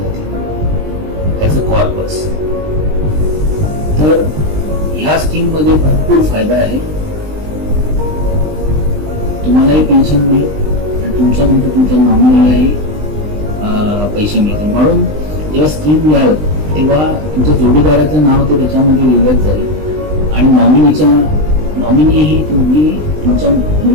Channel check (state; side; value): late; left; 20 ms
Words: ॲज अ कॉर्पस. तर ह्या स्कीम मध्ये भरपूर फायदा आहे. तुम्हालाही पेन्शन मिळेल आणि तुमच्यानंतर तुमच्या नॉमिनीलाही पैसे मिळतील. म्हणून जेव्हा स्कीम याल तेव्हा तुमच्या जोडीदाराचं नाव ते त्याच्यामध्ये लिहिलं जाईल आणि नॉमिनीही तुम्ही तुमच्या